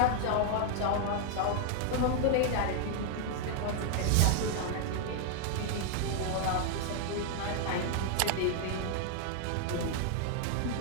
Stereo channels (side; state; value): both; different; correlation 0.00